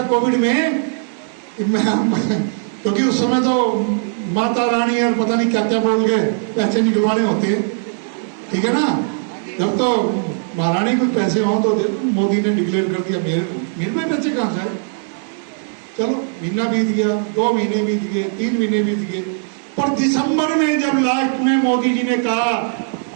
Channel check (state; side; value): silent; left; 67 dB below the other